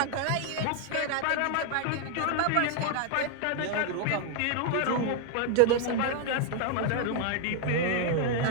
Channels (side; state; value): both; different; correlation 0.00